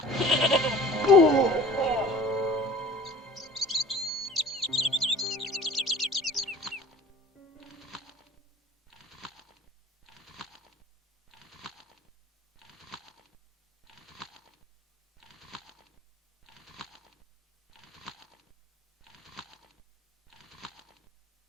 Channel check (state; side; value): normal; both; correlation 0.45